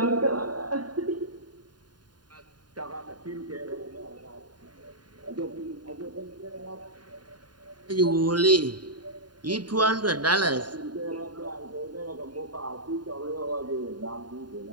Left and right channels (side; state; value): left; late; 0.70 ms